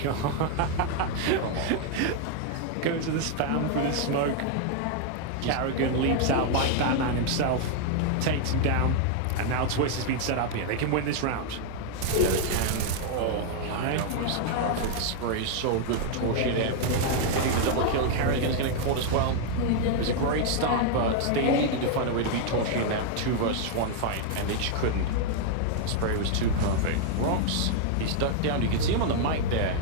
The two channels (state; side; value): different; both; correlation 0.00